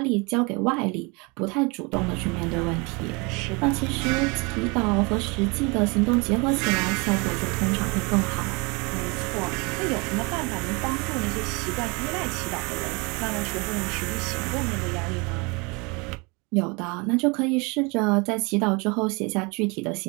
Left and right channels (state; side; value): quieter; left; 28.8 dB